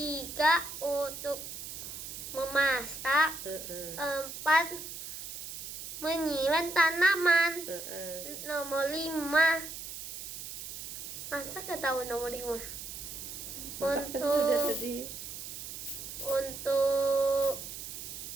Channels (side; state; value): right; noise; hiss, 9 dB below the sound